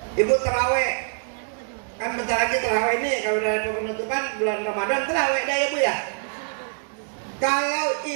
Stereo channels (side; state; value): left; silent; 62 dB below the other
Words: Ibu terawih kan bentar lagi terawih ini, kalau udah ada penutupan bulan Ramadan terawih dah ya Bu ya. Kalau